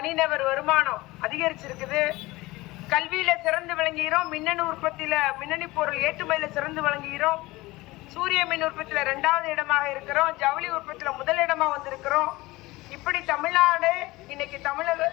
வருமானம் அதிகரிச்சிருக்குது, கல்வியில சிறந்து விளங்குகிறோம், மின்னணு உற்பத்தியில மின்னணு பொருள் ஏற்றுமதியில சிறந்து விளங்குகிறோம், சூரிய மின் உற்பத்தியில 2வது இடமாக இருக்கிறோம், ஜவுளி உற்பத்தியில முதல் இடமா வந்திருக்கிறோம். இப்படி தமிழ்நாடு இன்னைக்கு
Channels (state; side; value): quieter; right; 20.4 dB